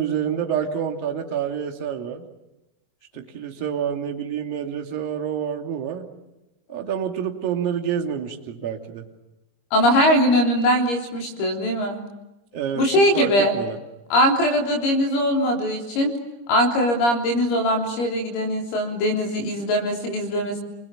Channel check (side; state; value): right; late; 25 ms